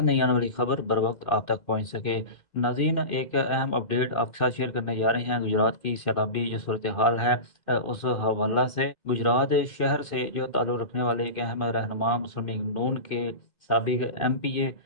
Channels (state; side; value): late; right; 2.0 ms